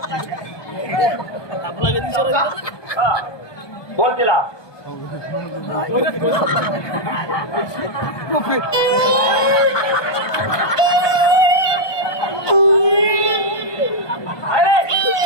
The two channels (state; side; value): late; right; 1.2 ms